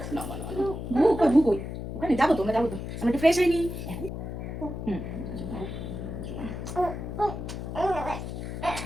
না না না, ভু কই, ভু কই? ওখানে যাবো তো, আমরা যাবো তো, আমরা একটু ফ্রেশ হয়নি। হুম,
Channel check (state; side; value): noise; left; hum, 6 dB below the sound